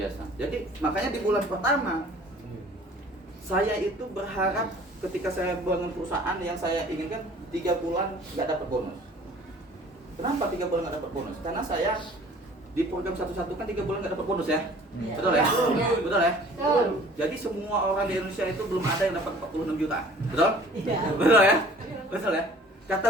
Jadi makanya di bulan pertama saya itu berharap ketika saya bangun perusahaan yang saya inginkan 3 bulan nggak dapat bonus. Kenapa 3 bulan nggak dapat bonus? Karena saya di program satu-satu kan 3 bulan nggak dapat bonus ya, betul ya? Betul ya? Jadi semua orang di Indonesia itu belum ada yang dapat 46 juta, betul? Betul ya? Betul ya?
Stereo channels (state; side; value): normal; both; correlation 0.50